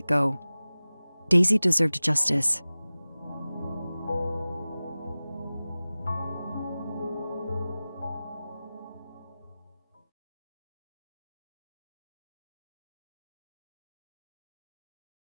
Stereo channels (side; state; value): both; inverted; correlation -0.97